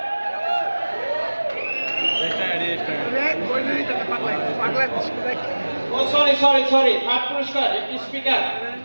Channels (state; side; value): inverted; both; correlation -1.00